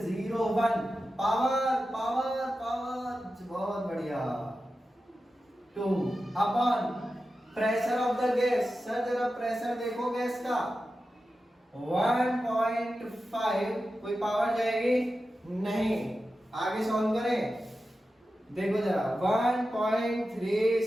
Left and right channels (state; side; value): normal; both; correlation 0.92